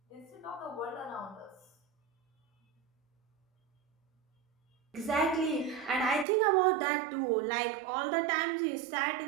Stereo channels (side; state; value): left; drops out; at 6.2 s